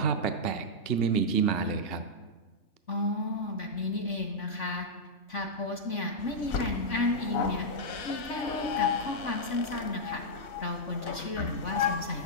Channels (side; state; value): right; late; 3.5 ms